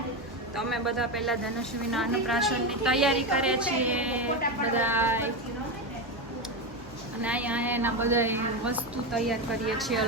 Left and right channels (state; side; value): normal; both; correlation 0.13